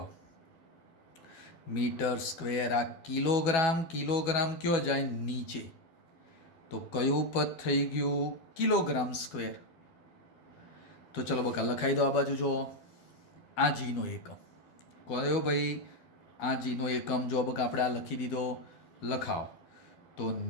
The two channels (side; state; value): right; late; 12 ms